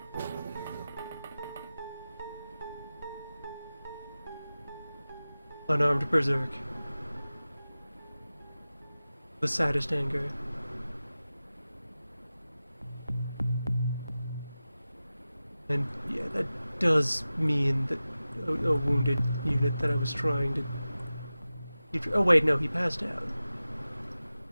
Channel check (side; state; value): both; inverted; correlation -0.95